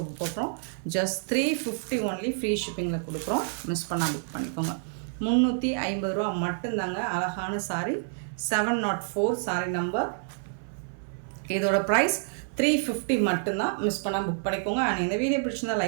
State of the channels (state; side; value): silent; left; 59 dB below the other